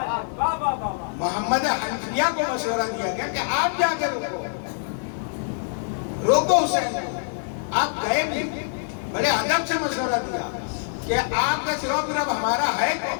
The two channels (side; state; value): right; silent; digital silence